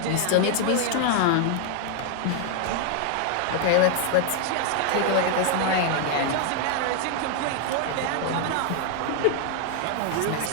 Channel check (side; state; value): both; different; correlation 0.00